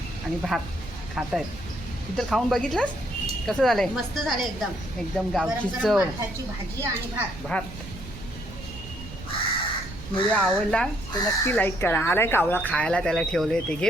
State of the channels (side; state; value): right; noise; rumble, 13 dB below the sound